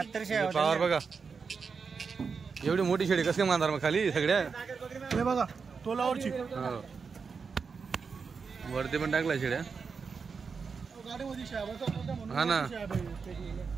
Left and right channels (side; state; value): left; quieter; 5.4 dB